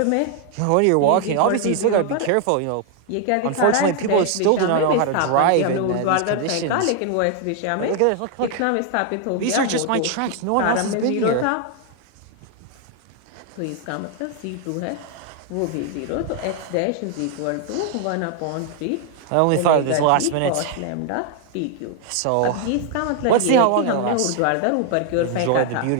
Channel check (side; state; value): both; different; correlation 0.00